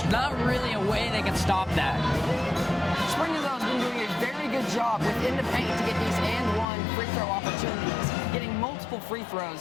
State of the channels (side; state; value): right; drops out; at 6.7 s